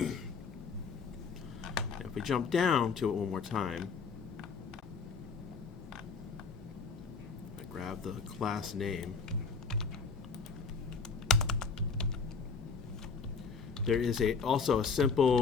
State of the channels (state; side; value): quieter; right; 5.1 dB